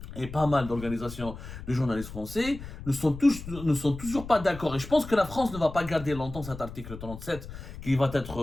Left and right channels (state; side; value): noise; left; rumble, 12 dB below the sound